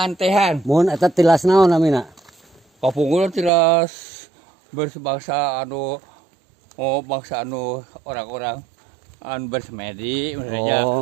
Mun eta tilas naon namina? Papungul tilas berbangsa anu bangsa anu orang-orang anu bersemedi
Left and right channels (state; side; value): drops out; left; at 3.5 s